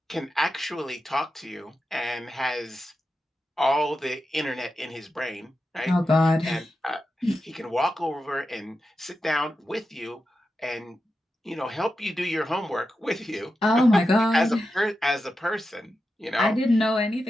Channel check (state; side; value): normal; both; correlation 0.90